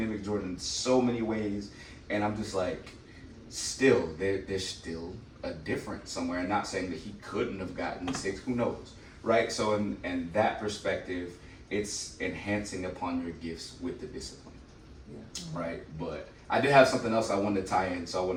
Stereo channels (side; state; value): both; identical; correlation 1.00